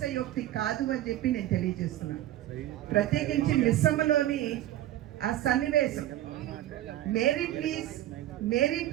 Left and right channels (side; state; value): left; quieter; 13.7 dB